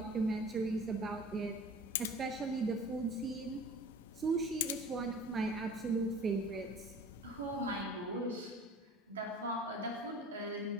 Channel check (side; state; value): both; normal; correlation 0.43